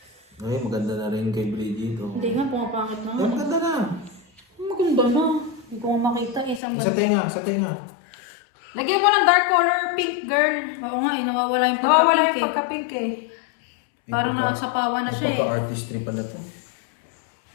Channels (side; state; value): right; drops out; at 6.6 s